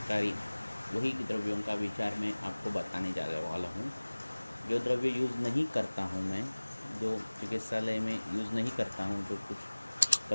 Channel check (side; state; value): both; inverted; correlation -1.00